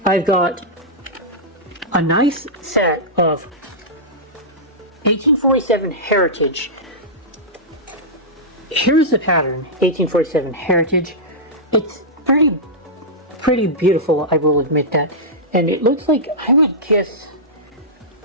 I've got a nice set of 1847 Heritage. Here's the pattern, 1847 Heritage. It's pretty beautiful, I will admit that. And it looks like, I would guess,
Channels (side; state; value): both; normal; correlation -0.13